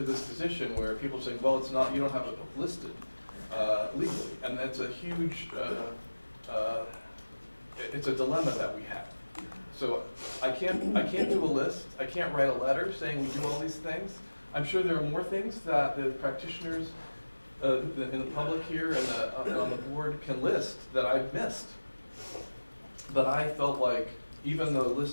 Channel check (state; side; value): inverted; both; correlation -1.00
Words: this position where people are saying, well, it's not, you don't have it listed legally. And that's a huge, it's a dilemma that we have. So I can't do a list. I can't write a letter saying we do all these things. I'm sure there are more things that the practitioners in the public here and on the board can list that I've missed. But I felt like even the